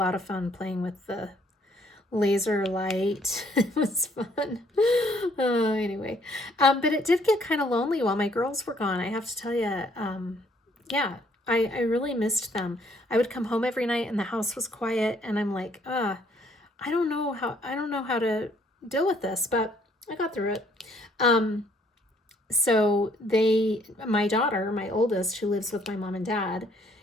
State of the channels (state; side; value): normal; both; correlation 0.65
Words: of fun playing with the laser light. It was fun. Anyway, but it did get kind of lonely while my girls were gone. I have to tell you, yeah, I really missed them. I would come home every night and the house was quiet, and I'm like, I don't know how to deal with this, but I got through it. So my daughter, my oldest, who lives with my mom and dad,